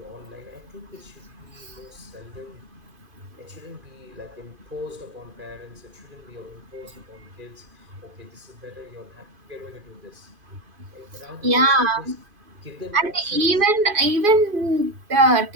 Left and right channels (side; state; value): left; late; 2.5 ms